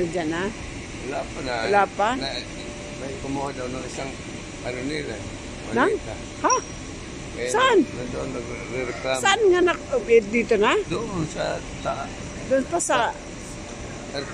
na. Wala pa na. Wala pa? May kumuha daw ng isang ano nila. Nang? Malita. Ha? Kaya Saan? Nandoon nagre-reklamo. Saan nga dito na? Doon sa Doon pa sa...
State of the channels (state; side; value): identical; both; correlation 1.00